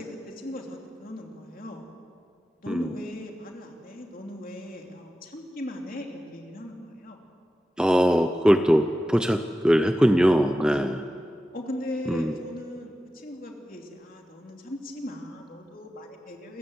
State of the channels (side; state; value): both; normal; correlation 0.93